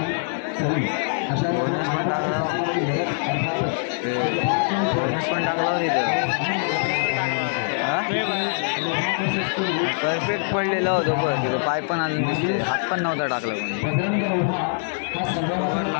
सरी अशा परफेक्ट पडलेला होतो बरं तिथं पाय पण आणून दिसते हात पण नव्हता टाकला पण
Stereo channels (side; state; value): right; silent; digital silence